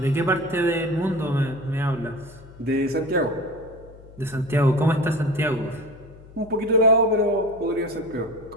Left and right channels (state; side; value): noise; left; hum, 21 dB below the sound